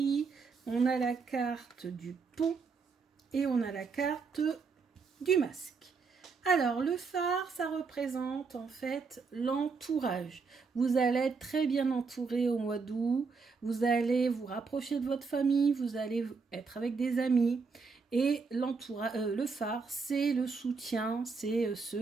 on a la carte du pont et on a la carte du masque. Alors, le phare, ça représente en fait l'entourage. Vous allez être très bien entouré au mois d'août, vous allez vous rapprocher de votre famille, vous allez être avec des amis. Et le phare, c'est le soutien, c'est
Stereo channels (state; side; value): quieter; left; 4.8 dB